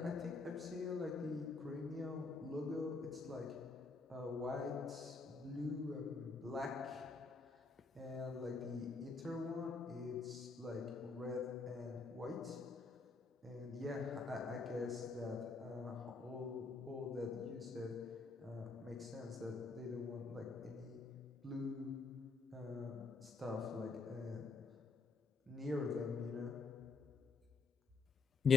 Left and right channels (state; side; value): quieter; right; 4.2 dB